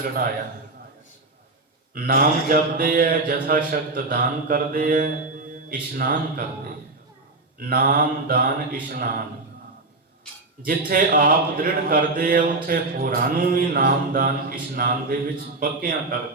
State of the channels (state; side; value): quieter; left; 3.2 dB